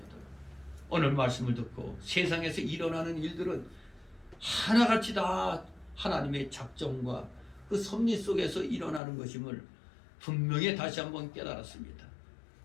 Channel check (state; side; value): drops out; right; at 9.0 s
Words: 오늘 말씀을 듣고 세상에서 일어나는 일들은 하나같이 다 하나님의 작정과 그 섭리 속에서 일어나는 것임을 분명히 다시 한번 깨달았습니다.